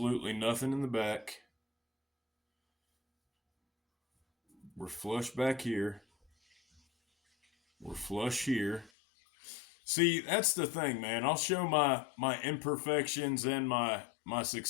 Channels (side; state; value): right; drops out; at 8.9 s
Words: nothing in the back. We're flush back here. We're flush here. See, that's the thing, man. I'll show my imperfections and my